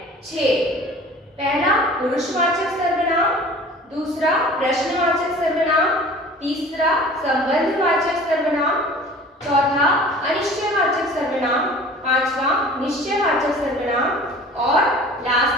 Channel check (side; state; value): both; normal; correlation 0.45